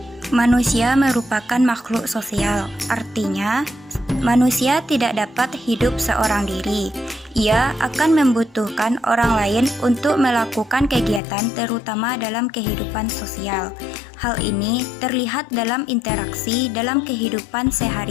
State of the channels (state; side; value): drops out; right; at 11.2 s